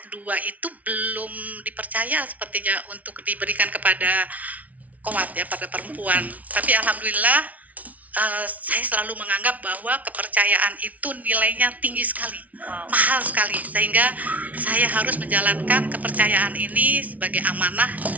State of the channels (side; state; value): left; late; 0.071 ms